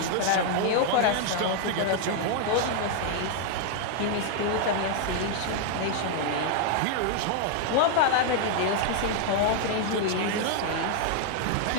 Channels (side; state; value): both; different; correlation 0.00